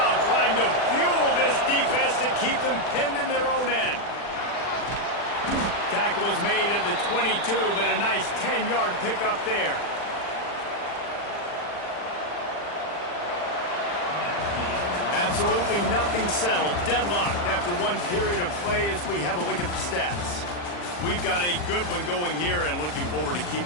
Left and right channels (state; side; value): late; right; 40 ms